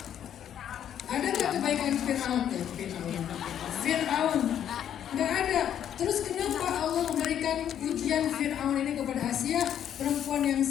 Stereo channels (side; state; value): right; quieter; 9.8 dB